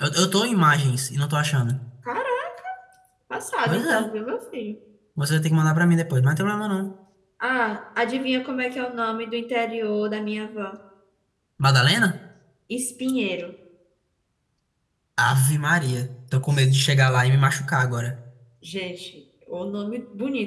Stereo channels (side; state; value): both; identical; correlation 1.00